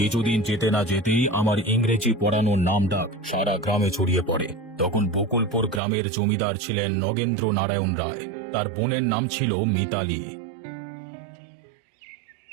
যেতে না যেতেই আমার ইংরেজি পড়ানোর নাম ডাক সারা গ্রামে ছড়িয়ে পড়ে। তখন বকুলপুর গ্রামের জমিদার ছিলেন নগেন্দ্র নারায়ণ রায়। তার বোনের নাম ছিল মিতালি।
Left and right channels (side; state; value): left; drops out; at 5.8 s